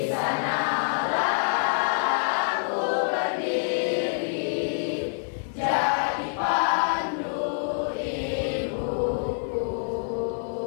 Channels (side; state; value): right; silent; digital silence